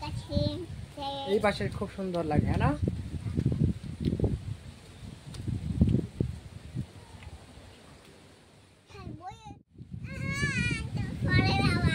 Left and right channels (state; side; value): identical; both; correlation 1.00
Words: এই পাশে খুব সুন্দর লাগে, হ্যাঁ না?